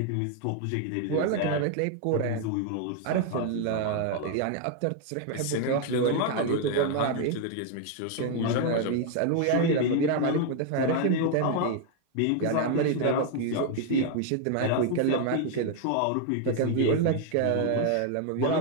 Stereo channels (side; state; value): both; different; correlation 0.00